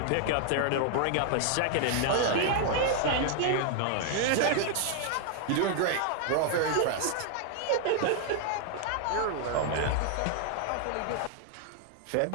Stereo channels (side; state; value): both; different; correlation 0.00